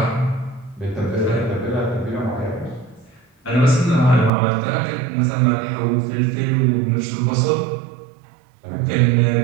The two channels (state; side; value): drops out; left; at 4.3 s